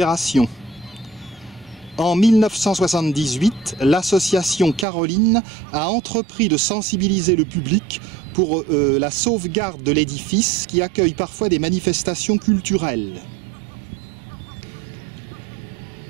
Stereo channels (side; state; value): left; drops out; at 4.9 s